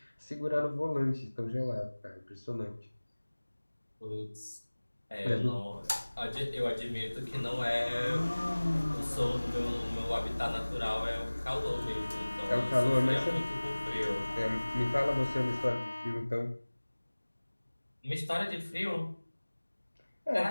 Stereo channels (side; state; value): both; inverted; correlation -1.00